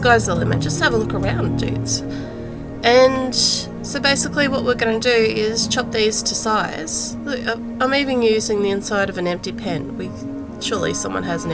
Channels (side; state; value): both; identical; correlation 1.00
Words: the limit. Just have a look around, dudes. And so basically what we're going to do is chop these to size. Look, I'm even using the inside of an empty pen. Surely someone has an